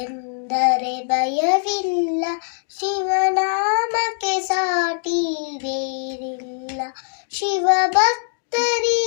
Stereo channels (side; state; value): right; silent; digital silence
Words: ಎಂದರೆ ಭಯವಿಲ್ಲ, ಶಿವನಾಮಕ್ಕೆ ಸಾಟಿ ಬೇರಿಲ್ಲ. ಶಿವ